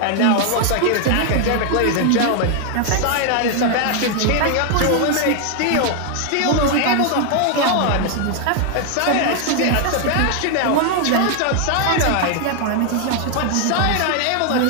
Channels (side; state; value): both; different; correlation 0.00